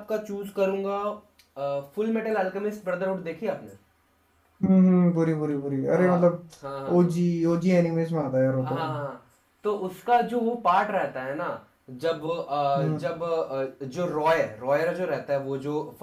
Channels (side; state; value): both; identical; correlation 1.00